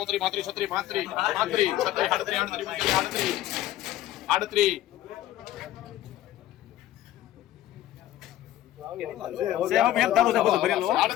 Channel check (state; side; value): quieter; right; 13.6 dB